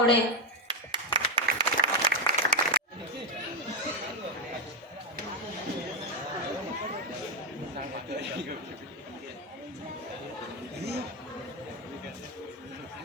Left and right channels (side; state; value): both; normal; correlation 0.08